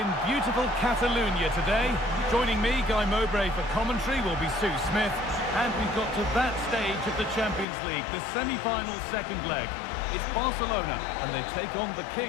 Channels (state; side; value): drops out; right; at 7.7 s